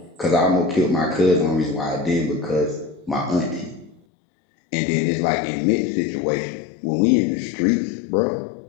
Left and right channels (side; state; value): right; drops out; at 4.0 s